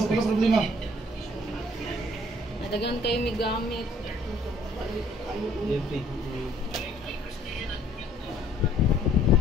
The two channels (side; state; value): both; normal; correlation 0.60